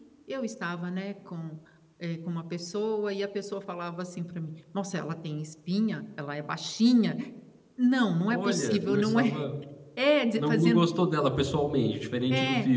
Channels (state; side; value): identical; both; correlation 1.00